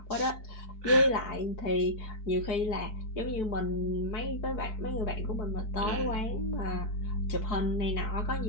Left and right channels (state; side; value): late; right; 4.6 ms